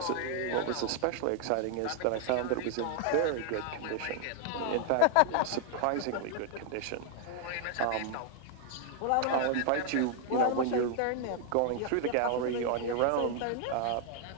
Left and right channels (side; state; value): both; different; correlation 0.00